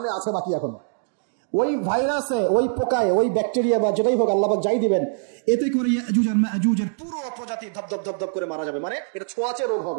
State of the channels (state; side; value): silent; left; digital silence